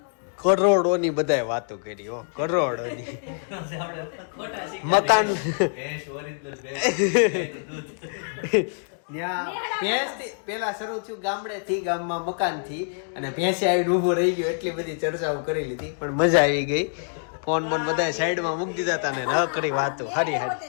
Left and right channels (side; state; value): right; silent; digital silence